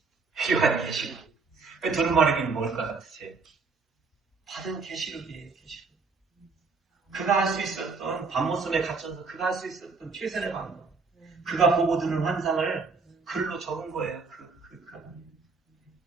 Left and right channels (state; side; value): quieter; left; 4.4 dB